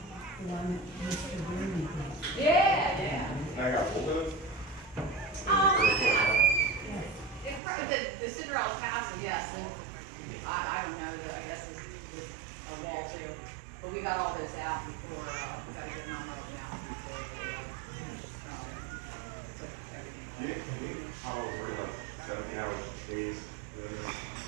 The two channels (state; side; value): drops out; left; at 7.6 s